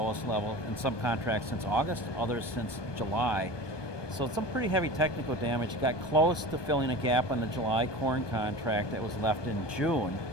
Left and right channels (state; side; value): late; right; 1.2 ms